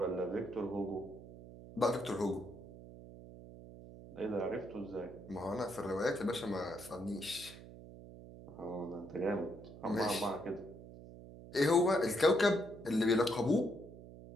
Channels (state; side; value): noise; right; hum, 16 dB below the sound